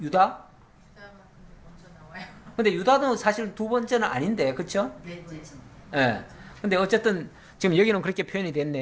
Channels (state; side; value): identical; both; correlation 1.00